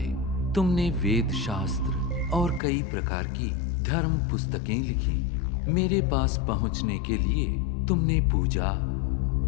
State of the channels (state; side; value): drops out; right; at 2.6 s